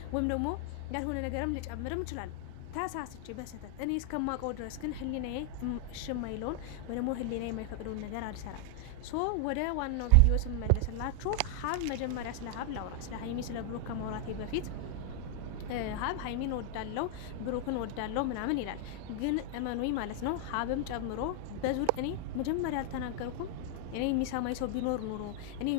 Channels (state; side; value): different; both; correlation 0.00